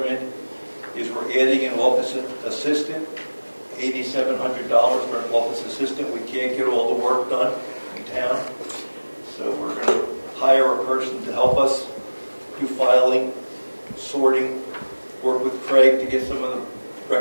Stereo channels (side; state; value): both; inverted; correlation -1.00